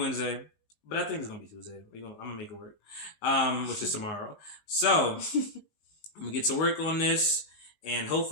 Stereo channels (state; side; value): late; right; 19 ms